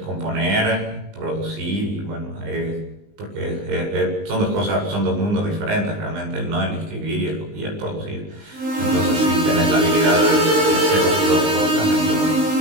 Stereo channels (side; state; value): left; late; 19 ms